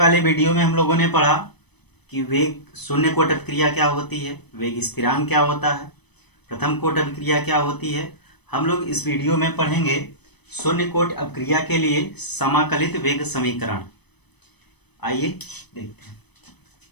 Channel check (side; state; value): right; late; 0.99 ms